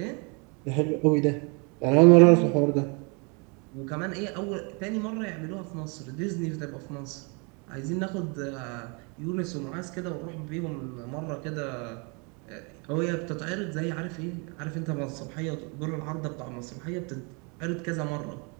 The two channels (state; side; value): quieter; left; 32.8 dB